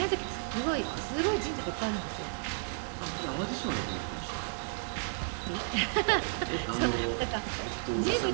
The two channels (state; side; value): silent; left; 56 dB below the other